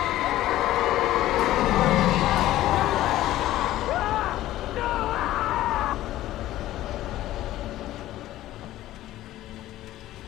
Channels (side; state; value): right; quieter; 14.7 dB